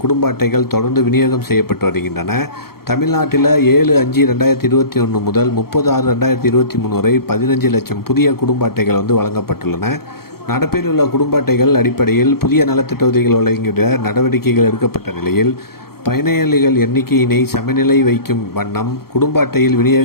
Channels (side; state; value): right; late; 0.94 ms